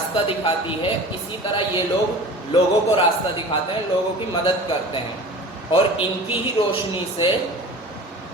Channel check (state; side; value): normal; both; correlation 0.39